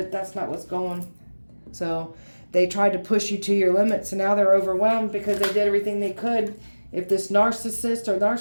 that's not what's going. So they tried to push you to your limits, and now they're overwhelmed because they did everything they could. If this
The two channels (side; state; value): both; inverted; correlation -1.00